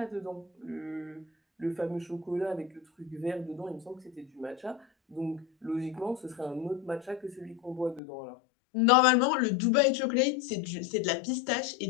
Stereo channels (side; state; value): right; drops out; at 8.0 s